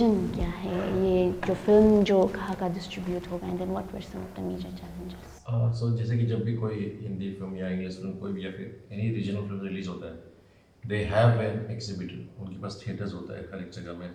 क्या है, ये जो फिल्म जो कहाँ का डिस्ट्रीब्यूट होगा, and then what were some of the major challenges. So जैसे कि जब भी कोई हिंदी फिल्म या इंग्लिश फिल्म कोई भी या फिर एनी रीजनल फिल्म रिलीज होता है, दे हैव एन एक्सिबिटर. उनके पास थिएटर्स होता है हर एक जगह में.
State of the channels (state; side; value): identical; both; correlation 1.00